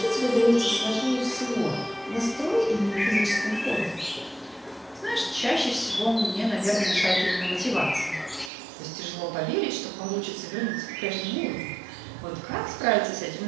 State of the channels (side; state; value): left; drops out; at 8.5 s